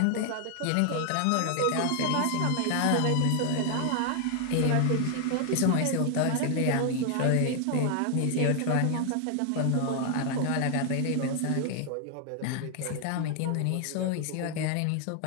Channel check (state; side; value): different; both; correlation 0.00